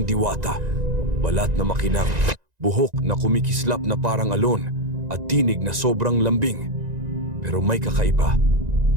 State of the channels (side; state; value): left; late; 1.9 ms